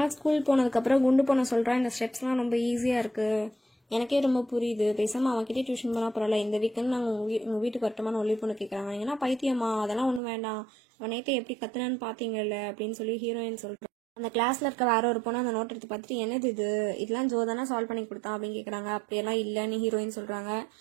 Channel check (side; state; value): left; drops out; at 10.2 s